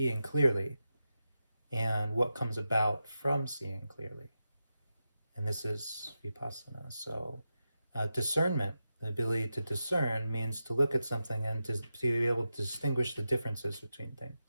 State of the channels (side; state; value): both; inverted; correlation -0.90